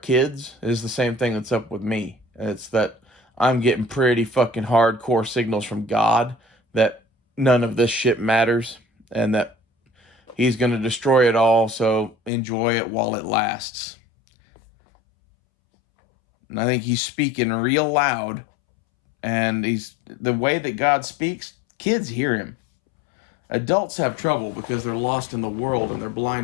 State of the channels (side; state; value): right; drops out; at 12.3 s